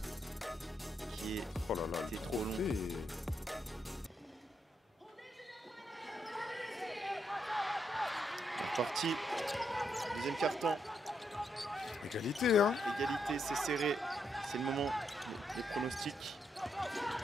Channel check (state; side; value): normal; both; correlation 0.79